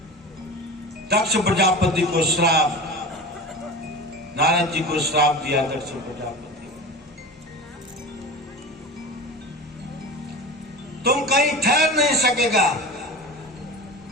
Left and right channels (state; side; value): normal; both; correlation 0.32